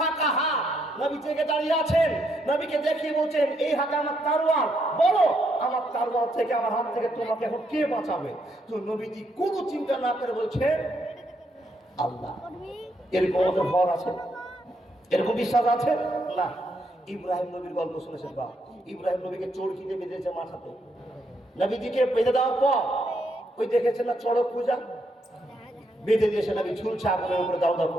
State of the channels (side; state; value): both; normal; correlation 0.76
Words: হাত, নবী জেগে দাঁড়িয়ে আছেন। নবীকে দেখিয়ে বলছেন, এই হাতে আমার তরোয়াল, বলো আমার তরোয়াল থেকে, আমার হাত থেকে তোমাকে এখন কে বাঁচাবে? তো নবীজি কোনো চিন্তা না করে বলছেন আল্লাহ। এরকম আমাদের ভর আছে? এরকম বিশ্বাস আছে না? ইব্রাহিম নবীর গল্প শুনেছেন বা? ইব্রাহিম নবীকে চড়কিতে বেঁধেছে মাথাতে। নবীজিকে বেঁধে দেওয়ার পর ওই দেখেছেন না চড়ক পূজা, বেঁধে দিয়েছে, নবী ঝুলছে, আগুনের উপরে দাও দাও